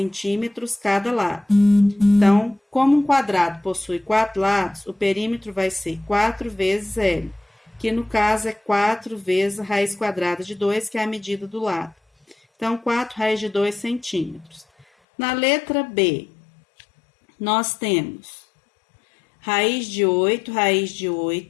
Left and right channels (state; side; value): drops out; right; at 14.9 s